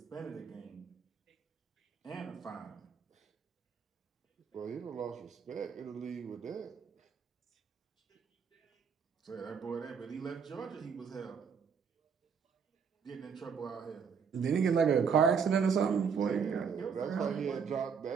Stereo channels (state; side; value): quieter; left; 6.4 dB